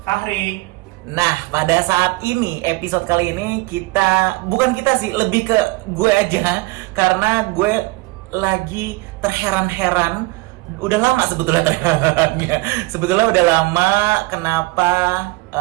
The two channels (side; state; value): left; quieter; 23.2 dB